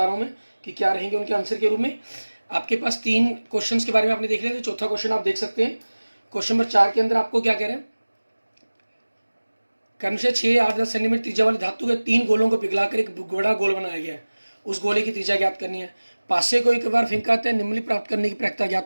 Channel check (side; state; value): both; inverted; correlation -1.00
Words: रहा हूँ मैं कि क्या रहेंगे उनके आंसर के रूप में। आपके पास 3 क्वेश्चंस के बारे में आपने देख लिया, तो चौथा क्वेश्चन आप देख सकते हैं। क्वेश्चन नंबर 4 के अंदर आपको क्या कह रहे हैं? क्रमशः 6, 8, 10 सेंटीमीटर त्रिज्या वाले धातु के 3 गोलों को पिघलाकर एक बड़ा गोल बनाया गया है। उस गोले की त्रिज्या ज्ञात करनी है। पासे को एक बार फेंकाते हैं, निम्नलिखित प्राप्त करने की प्रायिकता